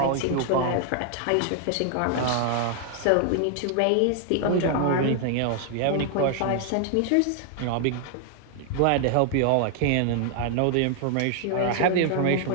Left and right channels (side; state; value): both; different; correlation 0.00